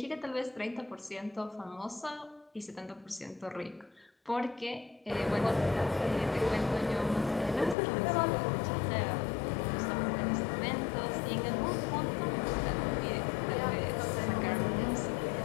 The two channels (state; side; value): drops out; right; at 7.8 s